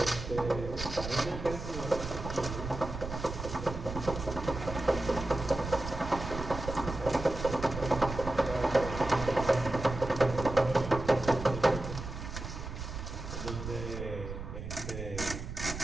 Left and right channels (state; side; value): noise; right; rumble, 8 dB below the sound